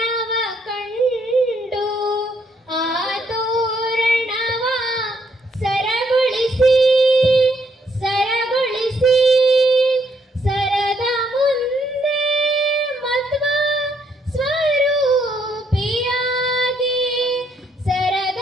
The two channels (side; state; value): both; normal; correlation 0.72